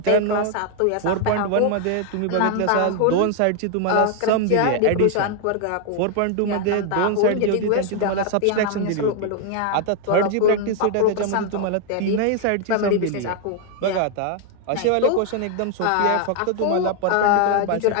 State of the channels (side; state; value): both; different; correlation 0.00